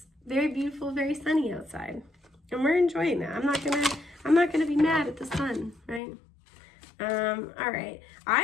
very beautiful, very sunny outside, and we're enjoying that. I'm not gonna be mad at the sun, right? All right.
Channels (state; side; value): drops out; right; at 6.0 s